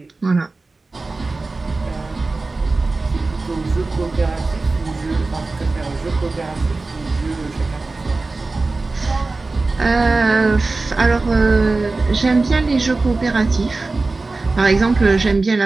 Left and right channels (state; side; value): quieter; left; 3.5 dB